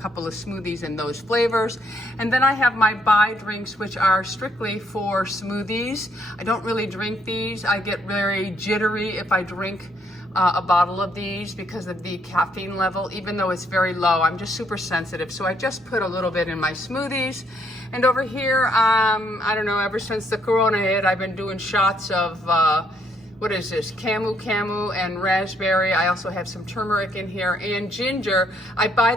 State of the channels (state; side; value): normal; both; correlation 0.71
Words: of smoothies in those flavors. And then I have my buy drinks, which are strictly for smoothies. I don't really drink these. I get very jittery if I drink a bottle of these because of the caffeine level. Even though it's very low, I'm just super sensitive. So I just put a little bit in my smoothies. And over here, I don't know, ever since the corona hit, I've been doing shots of, what is this, camu and raspberry. I also have some turmeric in here and ginger. I buy